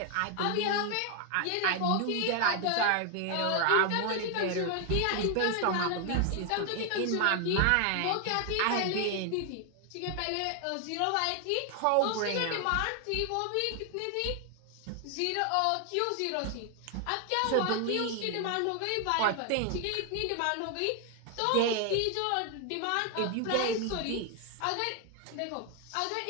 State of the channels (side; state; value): both; different; correlation 0.00